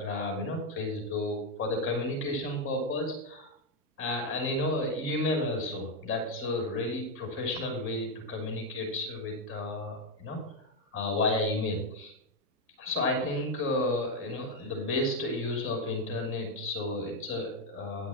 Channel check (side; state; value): both; normal; correlation 0.04